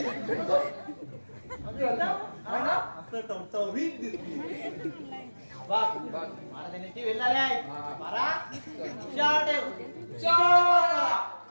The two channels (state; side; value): inverted; both; correlation -1.00